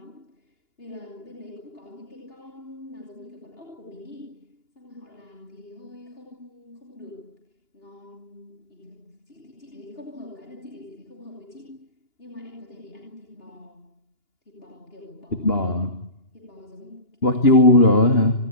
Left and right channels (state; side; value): late; right; 2.9 ms